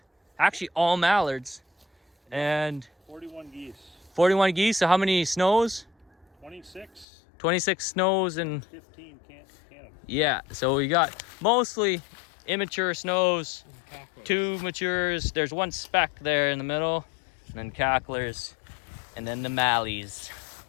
actually all mallards, and 41 geese. 41 geese. So how many snows? 26. 26 snows and 15 Canada. yeah. So we got mostly immature snows, 2 matures. There's 1 speck there in the middle, and then cacklers, and then the mallies.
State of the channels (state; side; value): drops out; right; at 7.1 s